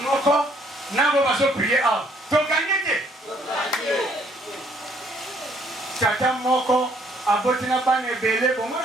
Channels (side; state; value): both; normal; correlation 0.65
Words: n'a pas besoin de prier à. Donc, gagnez. Tata moko, a botina ban ebele, bon, moi,